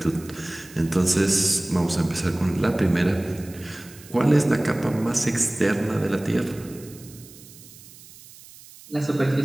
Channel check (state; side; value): noise; right; hiss, 20 dB below the sound